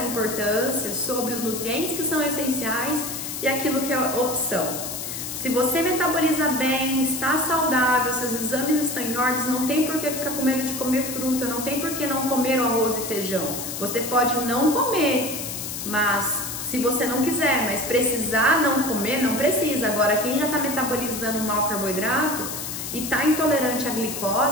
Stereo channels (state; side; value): noise; left; hiss, 6 dB below the sound